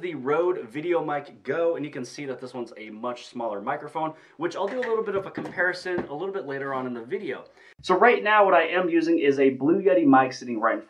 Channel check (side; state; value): both; identical; correlation 1.00